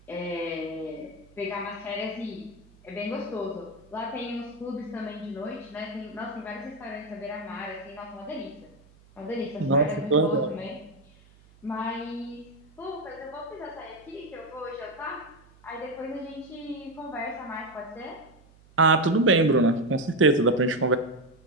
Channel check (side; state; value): right; noise; hum, 27 dB below the sound